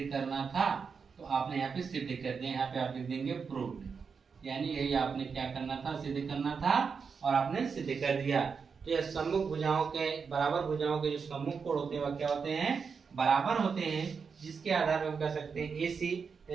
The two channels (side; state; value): left; quieter; 5.7 dB